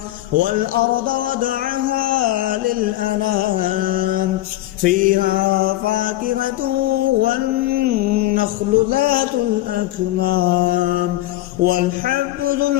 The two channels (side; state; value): right; quieter; 15.9 dB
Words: والأرض وضعها للأنام فيها فاكهة والنخل ذات الأكمام والحب ذو